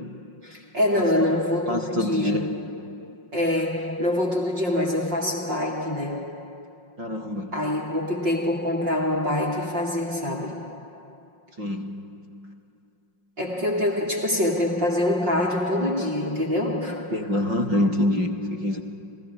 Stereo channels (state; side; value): late; left; 5.5 ms